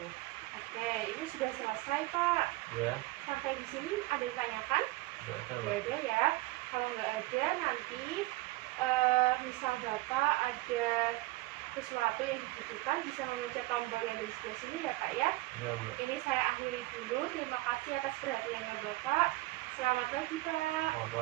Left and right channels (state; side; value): quieter; left; 20.1 dB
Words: Oke, ini sudah selesai Pak. ya. Sampai di sini ada yang tanyakan? Nggak ada Nggak Mbak. ada ya. Kalau nggak ada nanti misal Bapak ada sesuatu yang dibutuhkan bisa memencet tombol yang di sebelah sini ya Pak ya. Ya Mbak. Ini saya akhiri dulu. Terima kasih atas perhatiannya Bapak. Selamat pagi Pak.